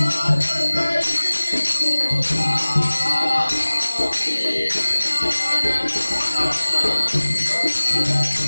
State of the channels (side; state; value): both; inverted; correlation -1.00